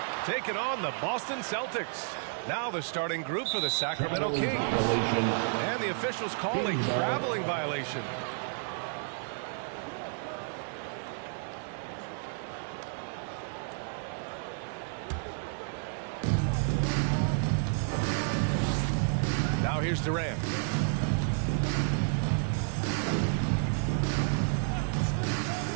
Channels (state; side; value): silent; left; digital silence